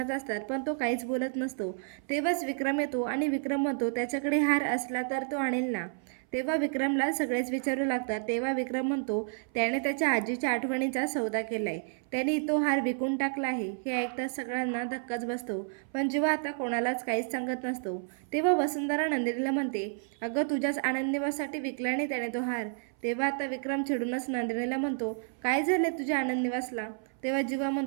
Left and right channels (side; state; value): left; silent; 57 dB below the other